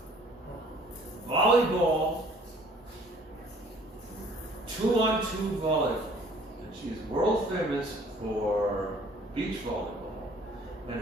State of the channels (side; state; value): both; normal; correlation 0.55